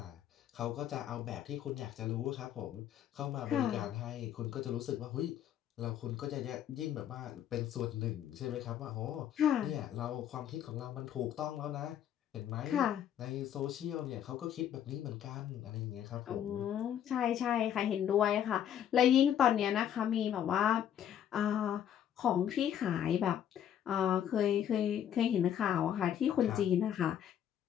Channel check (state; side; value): quieter; right; 10.1 dB